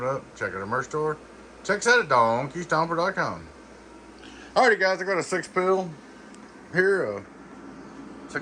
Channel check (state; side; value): identical; both; correlation 1.00